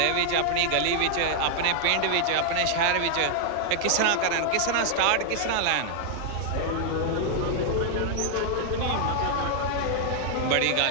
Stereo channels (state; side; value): different; both; correlation 0.00